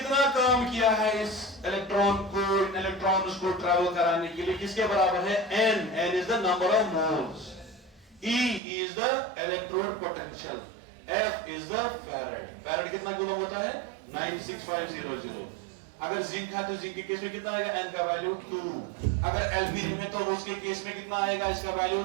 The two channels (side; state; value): left; drops out; at 8.6 s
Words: काम किया है इस इलेक्ट्रॉन को, इन इलेक्ट्रॉन्स को ट्रैवल कराने के लिए? किसके बराबर है? N. N is the number of moles. E is the electrode potential. F is the farad. Farad कितना कूलम होता है? 96500। अगर जिंक है तो जिंक के केस में कितना आएगा? N का वैल्यू 2। अगर एल्यूमिनियम है तो उसके केस में कितना आएगा? इसका वैल्यू